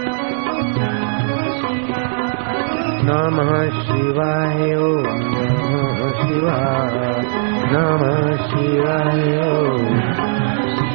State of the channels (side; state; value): left; silent; digital silence